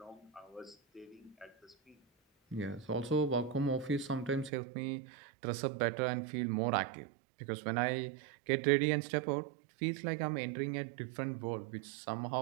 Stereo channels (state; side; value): drops out; left; at 4.5 s